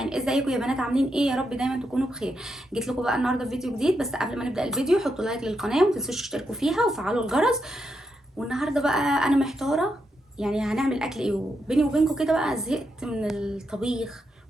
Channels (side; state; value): both; normal; correlation 0.83